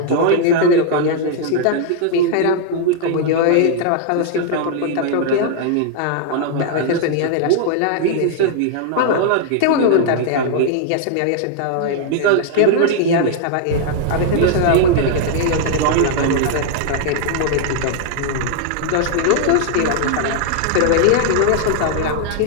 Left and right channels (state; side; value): different; both; correlation 0.00